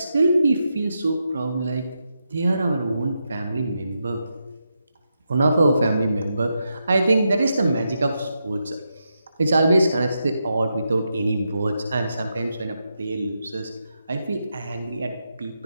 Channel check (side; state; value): both; inverted; correlation -0.85